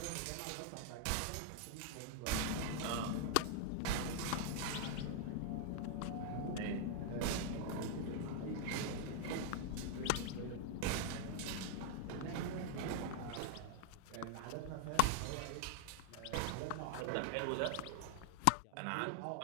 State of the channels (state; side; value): different; both; correlation 0.00